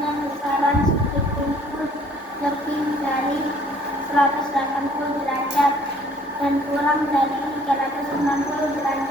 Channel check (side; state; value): both; normal; correlation 0.58